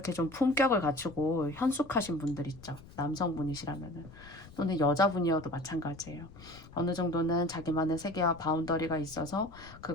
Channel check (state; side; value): noise; left; rumble, 19 dB below the sound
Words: 좀 품격을 갖추고 현숙하신 분들 있죠. 남성분이시라면은. 또는 여자분이어도 마찬가지예요. 어느 정도는 자기만의 세계와 바운더리가 있어서